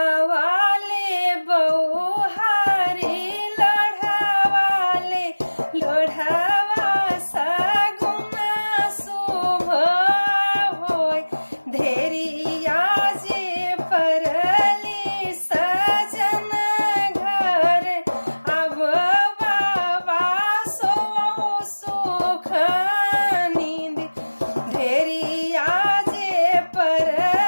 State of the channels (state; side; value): inverted; both; correlation -1.00